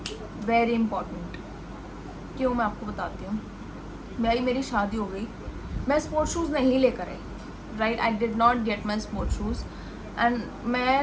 Very important. क्यों, मैं आपको बताती हूँ. मेरी शादी हो गई, मैं स्पोर्ट शूज़ नहीं लेकर आई, right. I did not get my sport shoes. And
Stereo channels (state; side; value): identical; both; correlation 1.00